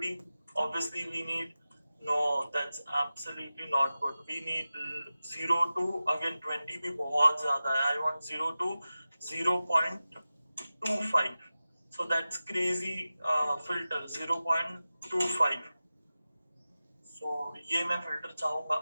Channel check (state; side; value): inverted; both; correlation -0.95